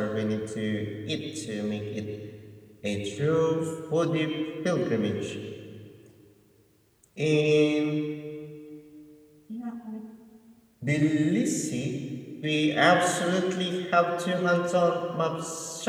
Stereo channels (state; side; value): identical; both; correlation 1.00